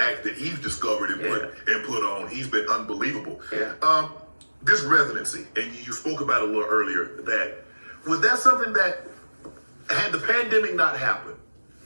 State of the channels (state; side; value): inverted; both; correlation -1.00